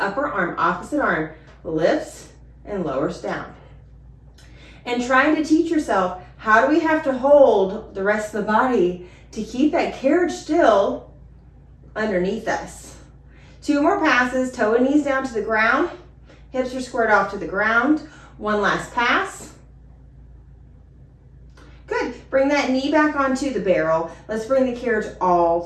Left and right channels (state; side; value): identical; both; correlation 1.00